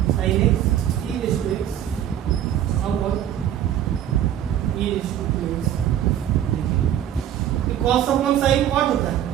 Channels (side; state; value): left; quieter; 10.8 dB